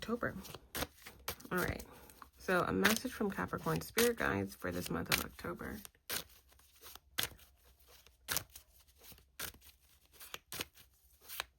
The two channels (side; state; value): both; identical; correlation 1.00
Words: All right, so a message from Capricorn spirit guides for this month of October.